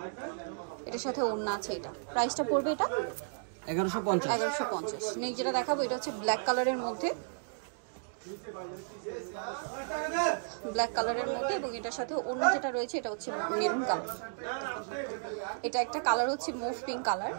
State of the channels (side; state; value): left; silent; digital silence